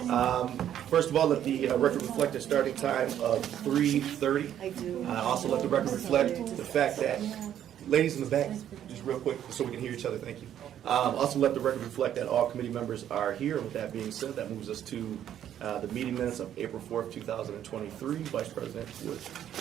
First of all, let the record reflect a starting time of 3:30. Also, let the record reflect the fact that, ladies in the back, just real quick, so we can hear each other, thank you. Also, let the record reflect that all committee members are here. With that being said, that moves us to the meeting minutes of April 4th, 2023. Vice President Wood,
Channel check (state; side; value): quieter; left; 10.5 dB